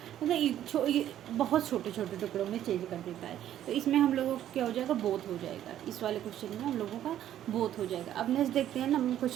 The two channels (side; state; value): left; quieter; 11.5 dB